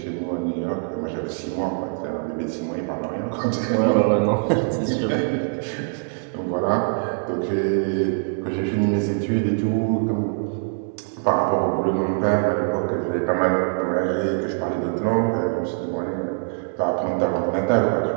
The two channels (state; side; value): silent; left; digital silence